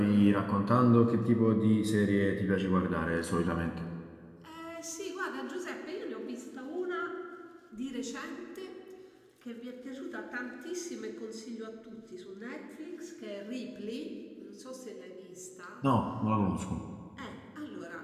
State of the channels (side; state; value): both; identical; correlation 1.00